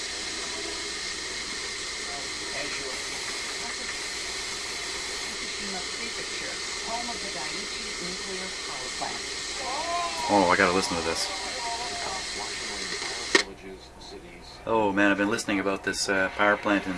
Prefecture, home of the Daiichi nuclear power plant. Oh, I gotta listen to this. Oh man, I've been listening about this power plant in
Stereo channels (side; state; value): both; identical; correlation 1.00